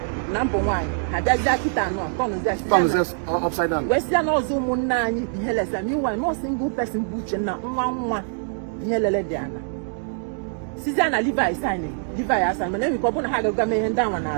Number 1, I just got it on upside down. Western also Munani, the Hellas, and you are no single person butcher now, one Hellegiana. Susanna Levi signing, Levi as I'm an problem had a gamin down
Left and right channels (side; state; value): left; silent; digital silence